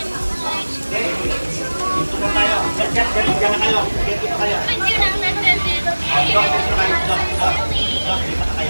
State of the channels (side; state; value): both; inverted; correlation -1.00